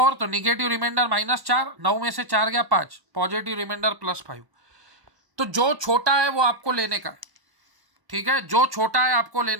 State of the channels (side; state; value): left; late; 1.0 ms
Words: तो निगेटिव रिमाइंडर -4, 9 में से 4 गया 5, पॉजिटिव रिमाइंडर +5। तो जो छोटा है वो आपको लेने का है, ठीक है, जो छोटा है आपको